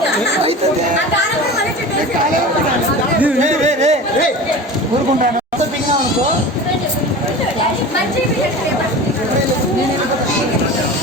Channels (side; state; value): both; normal; correlation 0.34